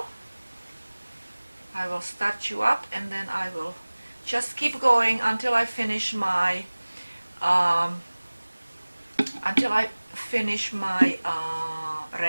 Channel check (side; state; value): both; inverted; correlation -1.00